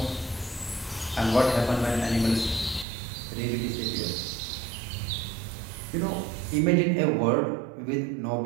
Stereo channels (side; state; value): left; drops out; at 2.9 s